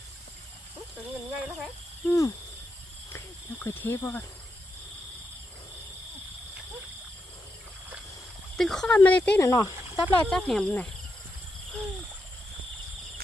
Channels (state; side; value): normal; both; correlation 0.84